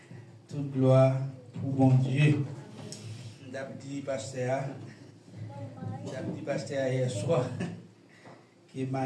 Toute gloire pour bon Dieu. D'abdi pasteur hier soir, qui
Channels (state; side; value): identical; both; correlation 1.00